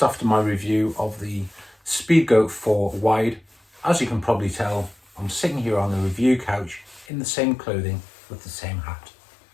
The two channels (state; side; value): drops out; right; at 7.1 s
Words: after my review of the Speedgoat 4 wide. As you can probably tell, I'm sitting here on the review couch in the same clothing with the same hat.